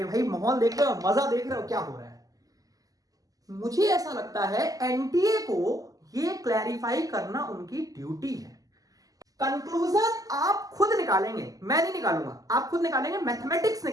भाई माहौल देख रहे हो, मजा देख रहे हो क्या हो रहा है। मुझे ऐसा लगता है एनटीए को ये क्लैरिफाई करना उनकी ड्यूटी है। कंक्लूजन आप खुद निकालेंगे, मैं नहीं निकालूंगा, आप खुद निकालेंगे, मैथमेटिक्स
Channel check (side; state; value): left; late; 0.17 ms